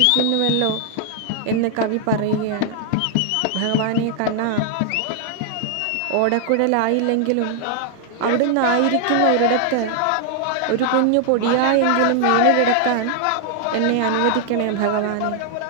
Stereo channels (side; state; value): both; different; correlation 0.00